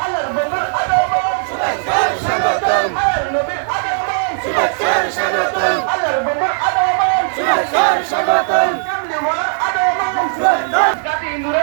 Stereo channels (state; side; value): silent; left; digital silence